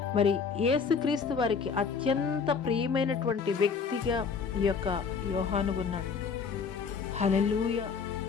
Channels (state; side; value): quieter; right; 5.7 dB